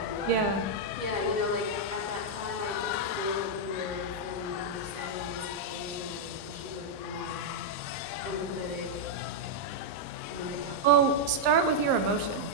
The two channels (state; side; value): normal; both; correlation -0.03